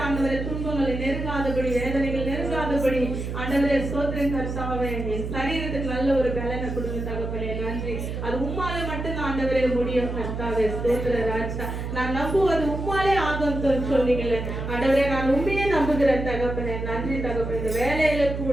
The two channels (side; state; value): right; noise; hum, 5 dB below the sound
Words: ஆண்டவரே துன்பங்களை நெருங்காதபடி வேதனைகள் நெருங்காதபடி ஆண்டவரே ஸ்தோத்திரம் கர்த்தாவே. என் சரீரத்துக்கு நல்ல ஒரு பலனை கொடுங்க தகப்பனே. நன்றி. அது உம்மாலே மட்டும் ஆண்டவரே முடியும் கர்த்தாவே ஸ்தோத்திர ராஜா. நான் நம்புவது உம்மாலே ஆகும் சொன்னீங்களே ஆண்டவரே. நான் உண்மையே நம்புகிறேன் தகப்பனே. நன்றி தகப்பனே. இந்த வேலையில